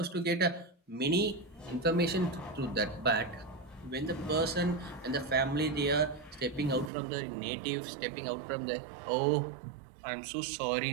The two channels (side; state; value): left; drops out; at 6.9 s